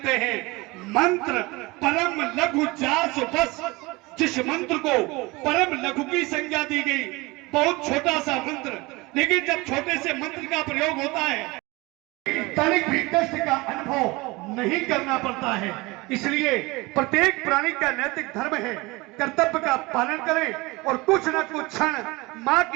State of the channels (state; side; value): quieter; left; 23.3 dB